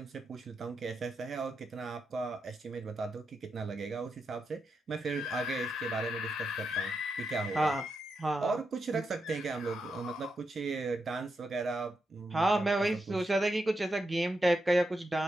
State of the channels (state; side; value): normal; both; correlation 0.85